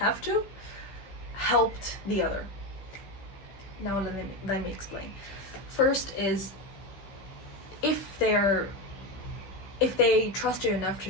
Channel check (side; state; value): right; late; 15 ms